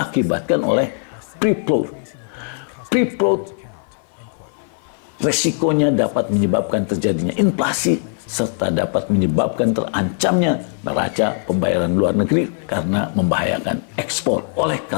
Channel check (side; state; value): right; silent; 56 dB below the other